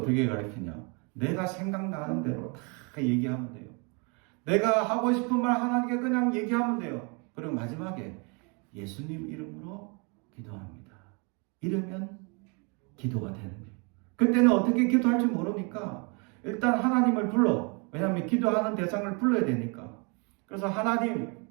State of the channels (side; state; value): left; quieter; 33.2 dB